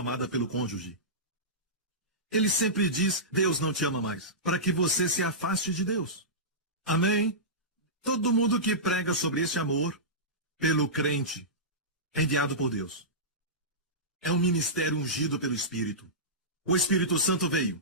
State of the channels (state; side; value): normal; both; correlation -0.17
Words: pelo cônjuge. Ele sempre diz, Deus não te ama mais, para que você se afaste de Deus. Amém? Todo mundo que prega sobre esse amor pelo crente é enviado por Deus. É um ministério ungido pelo Espírito. O Espírito Santo veio